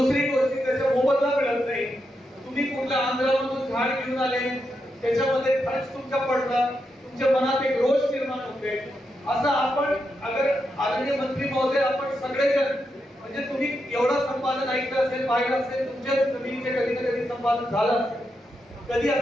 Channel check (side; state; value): both; normal; correlation 0.84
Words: गोष्ट त्याचा मोबदला मिळत नाही. तुम्ही कुठल्या आंध्रामधून झाड घेऊन आले, त्याच्यामध्ये खर्च तुमचा पडला, तुमच्या मनात एक रोष निर्माण होते. असं आपण अगर आदरणीय मंत्री महोदय आपण सगळेजण म्हणजे तुम्ही एवढं संपादन ऐकलं असेल, पाहिलं असेल, तुमच्या जमिनीचे कधी ना कधी संपादन झालं असेल. कधी